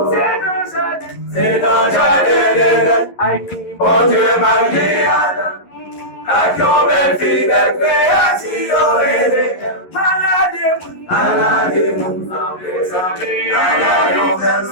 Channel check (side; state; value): right; late; 11 ms